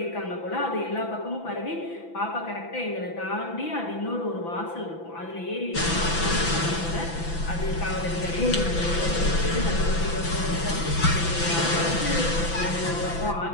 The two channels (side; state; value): right; late; 6.0 ms